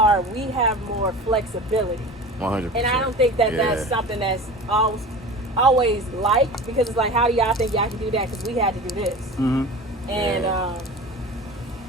We have more flexibility, 100%. and I don't think that Yeah. that's something that's always like because it's like, how do y'all think y'all can do that? Because we had to do this, Mm-hmm. and Yeah.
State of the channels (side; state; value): both; normal; correlation 0.35